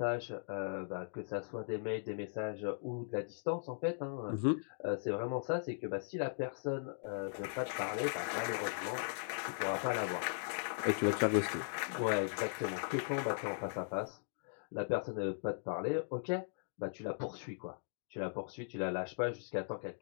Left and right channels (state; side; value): silent; right; digital silence